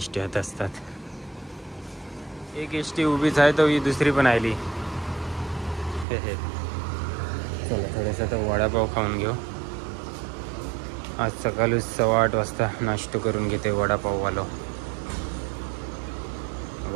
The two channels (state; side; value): drops out; left; at 6.1 s